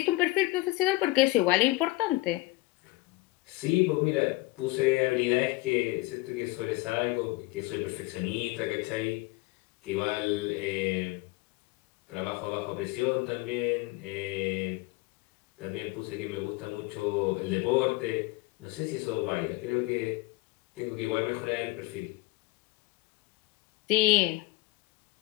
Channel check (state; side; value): quieter; right; 20.5 dB